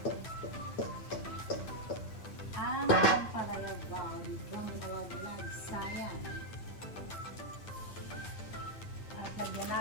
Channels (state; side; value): late; right; 9.5 ms